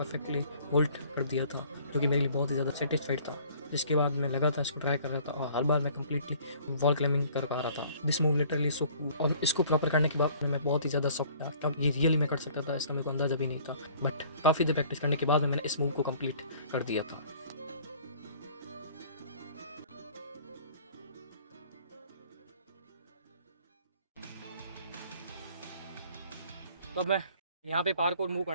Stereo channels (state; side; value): inverted; both; correlation -0.54